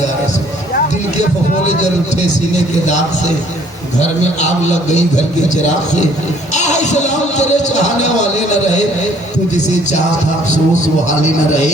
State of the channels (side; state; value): both; normal; correlation 0.60